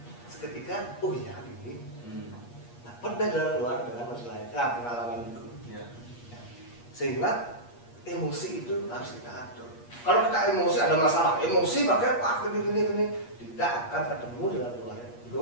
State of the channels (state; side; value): late; right; 8.4 ms